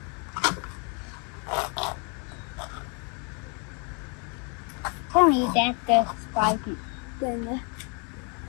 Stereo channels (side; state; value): right; quieter; 36.3 dB